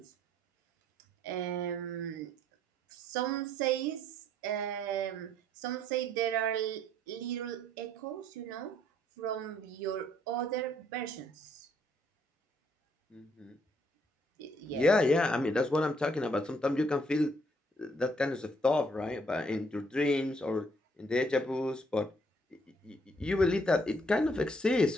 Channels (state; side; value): normal; both; correlation 0.67